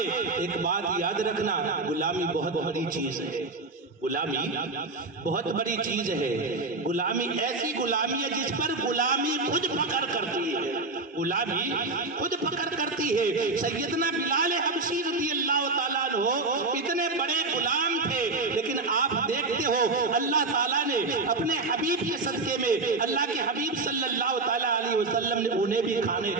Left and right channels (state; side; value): quieter; left; 3.5 dB